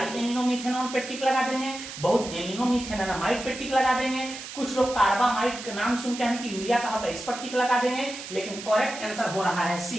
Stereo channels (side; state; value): right; noise; hiss, 11 dB below the sound